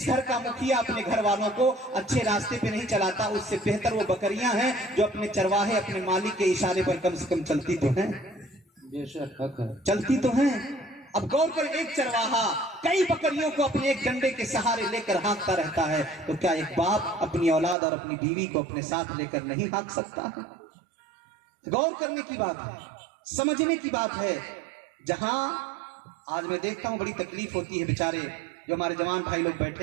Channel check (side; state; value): left; drops out; at 17.8 s